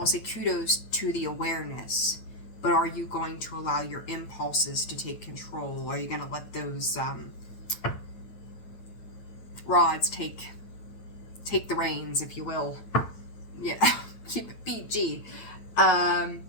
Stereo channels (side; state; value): right; late; 8.7 ms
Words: say kudos to the awareness. But are you going to allow your impulses to take control? Are you going to let those rods take the reins, if you will? Yeah, keep it PG. But